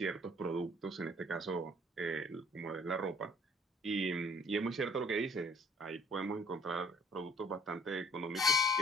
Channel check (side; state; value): both; normal; correlation 0.57